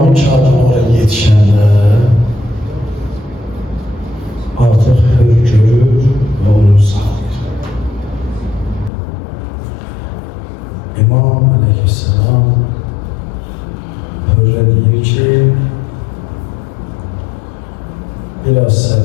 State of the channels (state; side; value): drops out; right; at 8.9 s